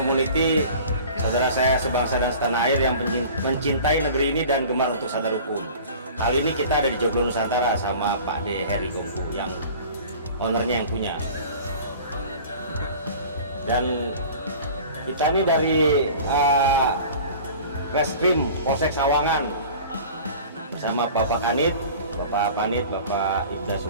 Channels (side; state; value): both; inverted; correlation -0.42